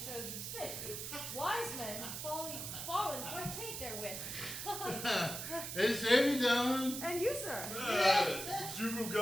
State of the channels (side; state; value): right; noise; hiss, 6 dB below the sound